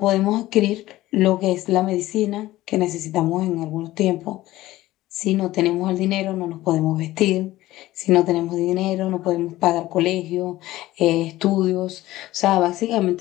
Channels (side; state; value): right; quieter; 16.4 dB